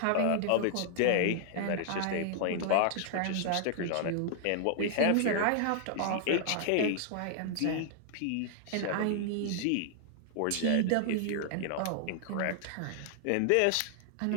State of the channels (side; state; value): both; different; correlation 0.00